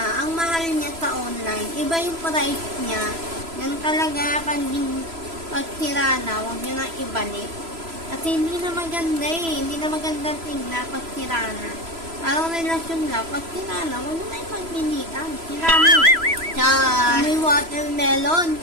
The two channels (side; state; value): left; late; 3.0 ms